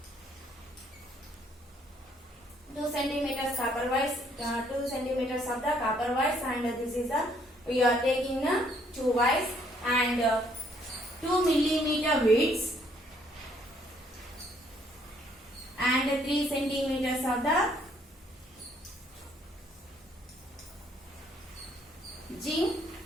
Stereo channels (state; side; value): normal; both; correlation 0.66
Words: 2 centimeters copper wires, 2 centimeters of the copper wires, and this is the, we are taking two wires and 2 millimeter widths and 3 centimeters of the zinc